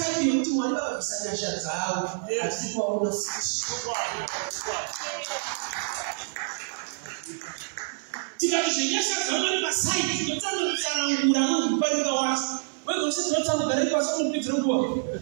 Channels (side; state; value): left; silent; 55 dB below the other